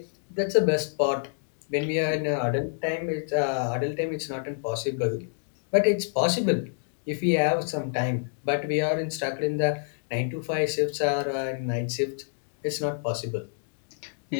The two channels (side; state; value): right; silent; digital silence